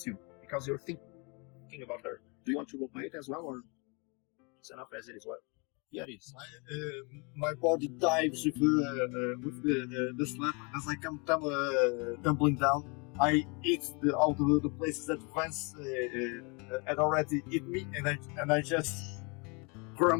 you because you're thinking about her. Do you want to roleplay it as well, or it's enough as it is? Well, yeah, it is. My body dives with the slap as I come tumbling down. I eat all the places that Vance had already eaten me, and I just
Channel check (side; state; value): right; quieter; 31.7 dB